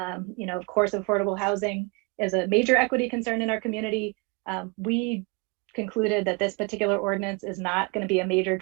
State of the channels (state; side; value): quieter; left; 29.9 dB